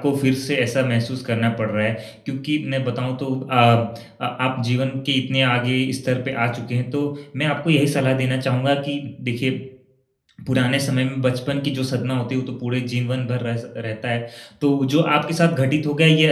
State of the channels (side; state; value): both; identical; correlation 1.00